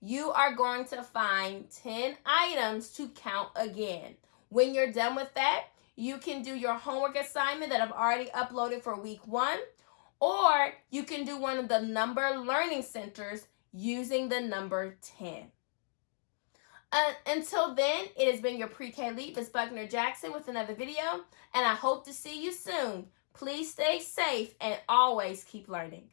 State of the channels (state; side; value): silent; right; digital silence